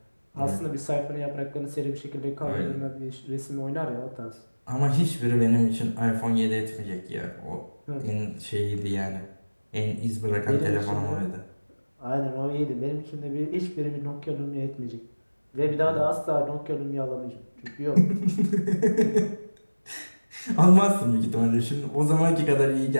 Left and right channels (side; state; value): both; inverted; correlation -1.00